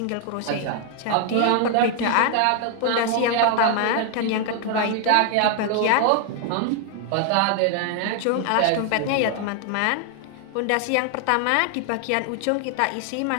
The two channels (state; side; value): different; both; correlation 0.00